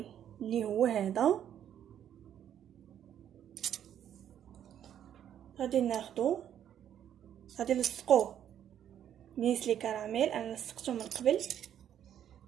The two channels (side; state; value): left; quieter; 10.1 dB